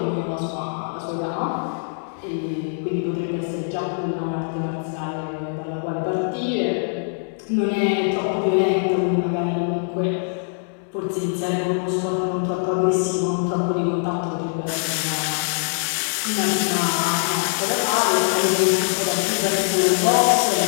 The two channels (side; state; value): right; silent; digital silence